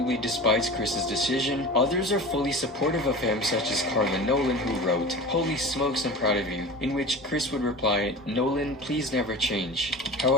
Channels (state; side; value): normal; both; correlation 0.34